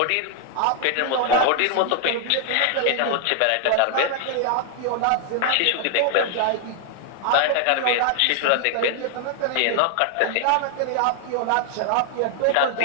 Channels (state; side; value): different; both; correlation 0.00